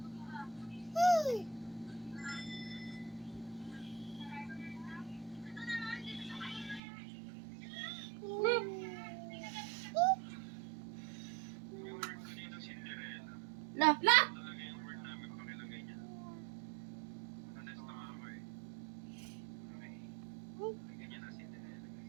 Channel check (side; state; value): left; drops out; at 6.8 s